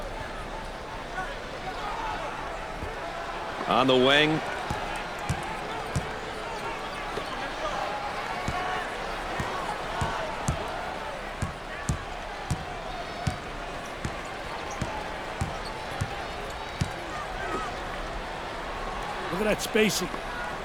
On the wing. Look at that spacing.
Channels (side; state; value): both; identical; correlation 1.00